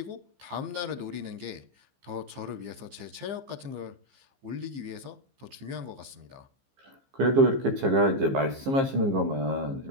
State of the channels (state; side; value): late; left; 15 ms